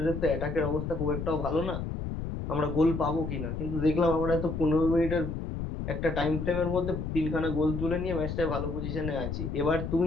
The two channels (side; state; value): left; noise; rumble, 4 dB below the sound